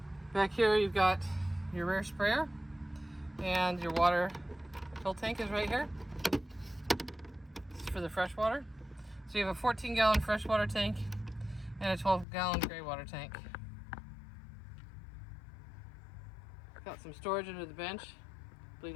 Back here you've got your rear sprayer and your water fill tank is right here. This is for the fresh water. So you have a 14-gallon freshwater tank and a 12-gallon gray water tank. Got some storage under the bench. I believe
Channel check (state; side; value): drops out; right; at 12.2 s